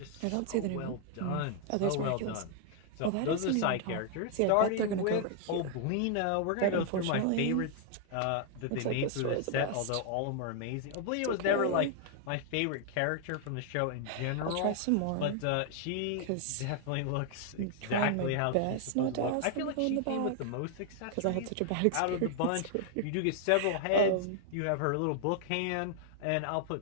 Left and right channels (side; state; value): both; different; correlation 0.00